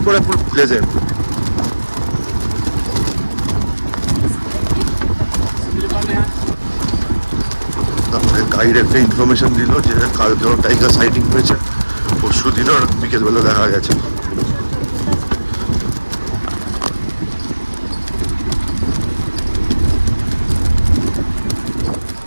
পুরো প্লেজেন্ট। তারপরে গাইড একটা ইনফরমেশন দিল যে কালকেও টাইগার সাইটিং হয়েছে, পরশু দিনও বিকেলবেলা দেখা গেছে।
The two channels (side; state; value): both; inverted; correlation -1.00